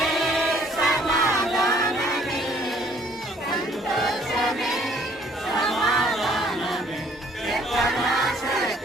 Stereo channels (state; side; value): normal; both; correlation 0.61